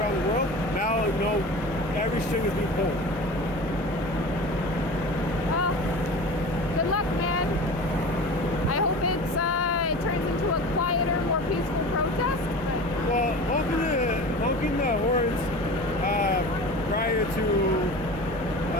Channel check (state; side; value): normal; both; correlation 0.35